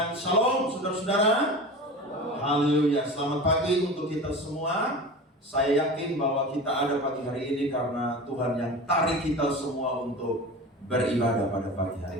shalom saudara-saudara. Haleluya, selamat pagi untuk kita semua. Saya yakin bahwa kita ada pagi hari ini karena Tuhan yang tarik kita semua untuk beribadah pada pagi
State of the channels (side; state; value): both; normal; correlation 0.32